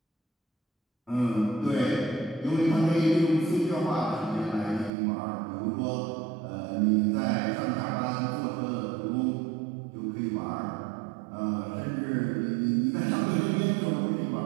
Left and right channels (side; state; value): left; drops out; at 4.9 s